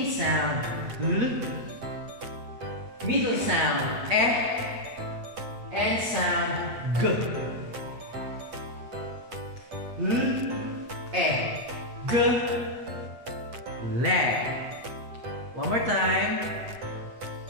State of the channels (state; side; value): late; left; 8.7 ms